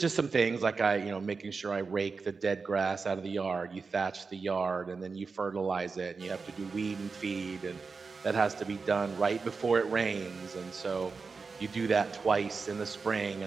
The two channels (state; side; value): quieter; left; 4.7 dB